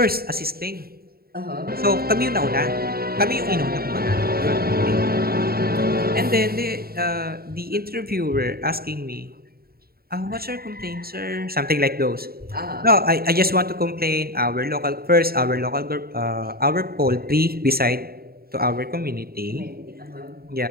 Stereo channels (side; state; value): left; late; 0.44 ms